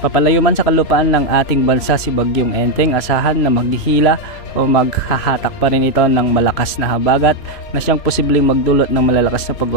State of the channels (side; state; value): right; late; 3.1 ms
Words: Papalayo man sa kalupaan ng ating bansa si Bagyong Enteng, asahan na maghihila o maghahatak pa rin ito ng malakas na habagat na siyang posibleng magdulot ng malalakas na